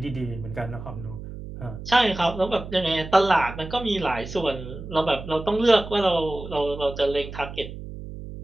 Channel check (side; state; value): right; noise; hum, 11 dB below the sound